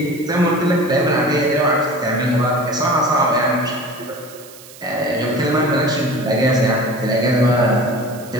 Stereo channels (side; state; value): right; noise; hiss, 20 dB below the sound